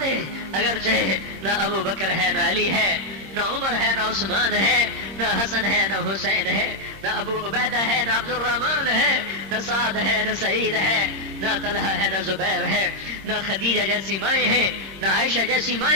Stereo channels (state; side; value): late; left; 26 ms